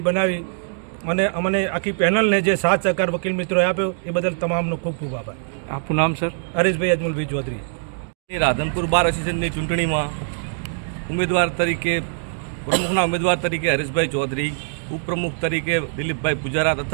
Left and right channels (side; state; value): left; silent; digital silence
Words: બનાવી અને અમને આખી પેનલને જે સાથ સહકાર વકીલ મિત્રોએ આપ્યો એ બદલ તમામનો ખૂબ ખૂબ આભાર। આપનું નામ સર? હરેશભાઈ અજમલભાઈ ચૌધરી। રાધનપુર બાર એસોસિએશનની ચૂંટણીમાં ઉમેદવાર તરીકે પ્રમુખના ઉમેદવાર તરીકે હરેશભાઈ ચૌધરી, ઉપપ્રમુખ તરીકે દિલીપભાઈ પૂજારા